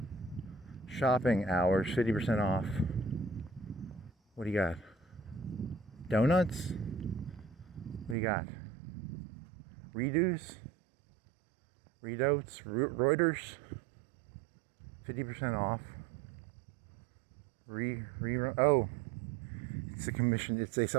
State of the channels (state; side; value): drops out; left; at 8.2 s